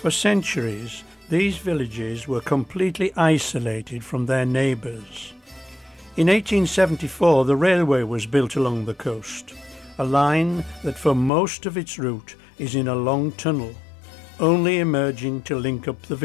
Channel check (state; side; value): drops out; right; at 11.3 s